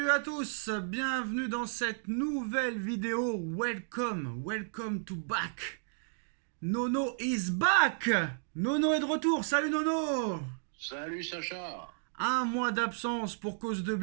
à tous, bienvenue dans cette nouvelle vidéo. Welcome to back. Nono is back. Nono est de retour. Salut Nono. Salut Sacha. Un mois d'absence pour cause de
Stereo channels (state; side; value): silent; left; digital silence